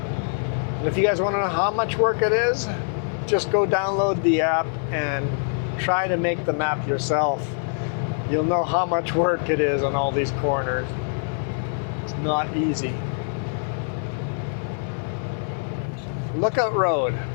And if you guys want to know how much work it is, just go download the app and try to make the map yourself. You'll know how much work it is on all these corners. It's not easy. Lookout Road,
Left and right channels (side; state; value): right; silent; 62 dB below the other